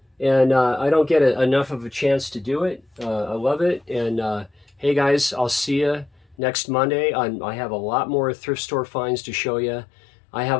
And I don't get enough of a chance to do it. I love it. And hey, guys, I'll see you next Monday. I have a lot more thrift store finds to show you. I have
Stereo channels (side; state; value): right; drops out; at 6.4 s